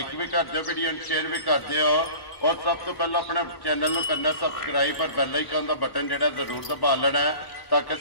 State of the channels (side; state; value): right; late; 1.1 ms